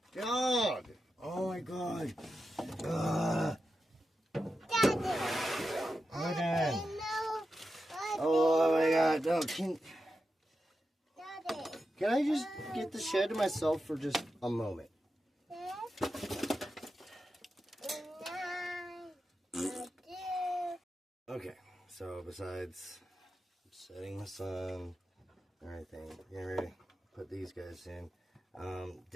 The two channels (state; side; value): normal; both; correlation 0.89